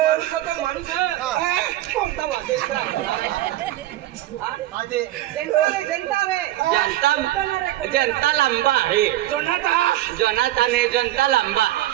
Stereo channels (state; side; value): quieter; left; 14.9 dB